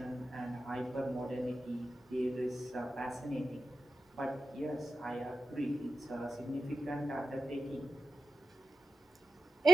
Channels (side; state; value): both; normal; correlation 0.91